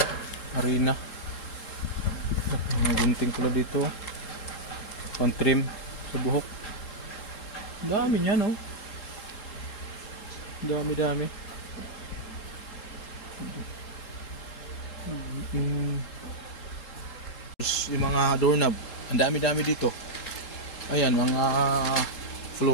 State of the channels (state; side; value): late; right; 3.7 ms